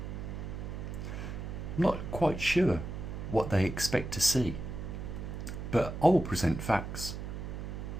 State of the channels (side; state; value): right; noise; hum, 6 dB below the sound